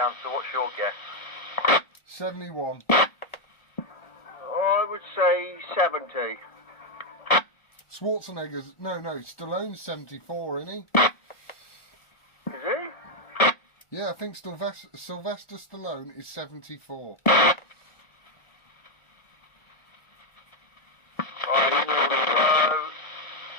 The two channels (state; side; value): late; right; 1.4 ms